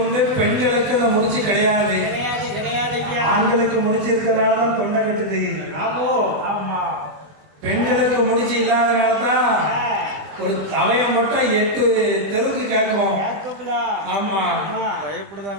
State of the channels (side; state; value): left; late; 20 ms